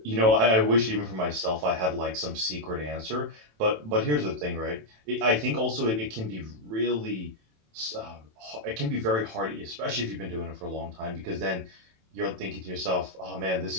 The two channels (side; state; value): left; late; 27 ms